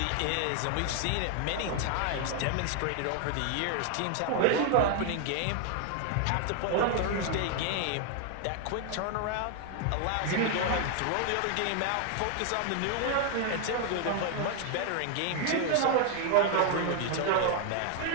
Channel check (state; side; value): different; both; correlation 0.00